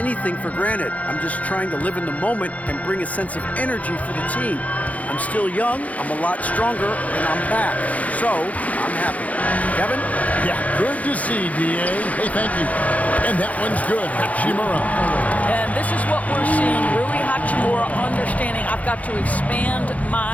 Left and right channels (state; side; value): late; right; 0.070 ms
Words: for granted. I'm just trying to live in the moment and bring a sense of energy for the team. I'm still young, I'm a lot stronger, and I'm back. So, I'm happy." Kevin? Yeah, good to see, D.A. Hey, thank you. And that one's good, Hachimura. And this is what we're seeing. Rui Hachimura understanding I've got to expand